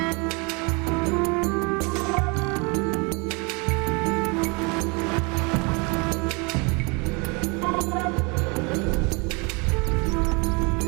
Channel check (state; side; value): quieter; left; 30.4 dB